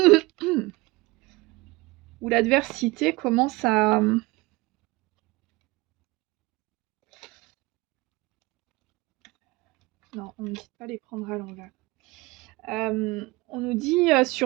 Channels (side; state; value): left; quieter; 22.5 dB